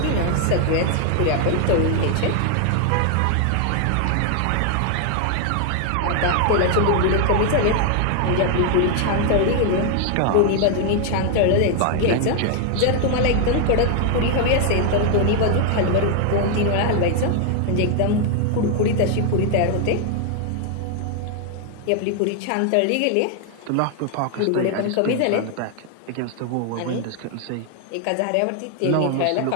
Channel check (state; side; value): different; both; correlation 0.00